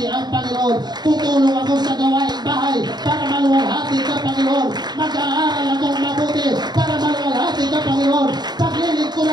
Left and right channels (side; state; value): left; late; 0.20 ms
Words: ang Panginoon. Tutulong ako sa gawaing bahay para maluwalhati ka, Panginoon. Mag-aaral akong mabuti para maluwalhati ka, Panginoon.